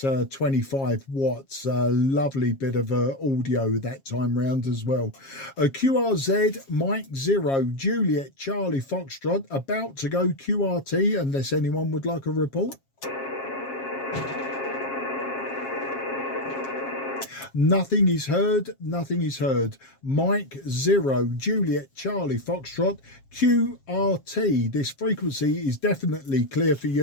25 watts. Lovely bit of audio that time round as well. QRZ, Mike 0, Juliet Charlie Foxtrot, about to go QRT, unless anyone would like a report. Nothing is heard, nothing is heard. Mike 0, Juliet Charlie Foxtrot, QRT. This frequency is definitely clear for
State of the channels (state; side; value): late; right; 7.4 ms